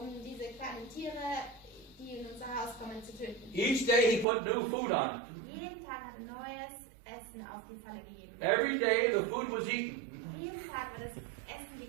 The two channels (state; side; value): drops out; left; at 4.2 s